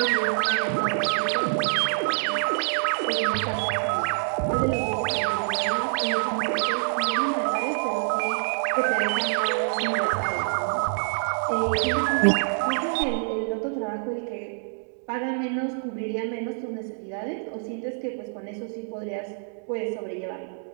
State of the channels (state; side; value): silent; left; digital silence